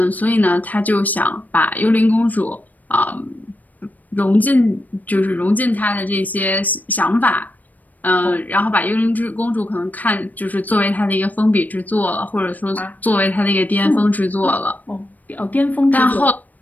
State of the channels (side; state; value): right; late; 0.081 ms